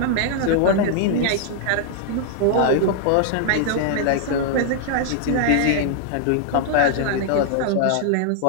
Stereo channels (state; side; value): different; both; correlation -0.01